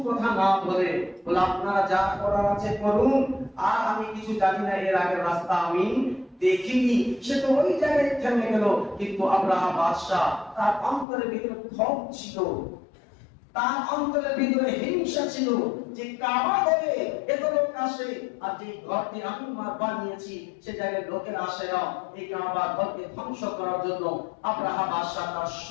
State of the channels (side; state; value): right; drops out; at 11.1 s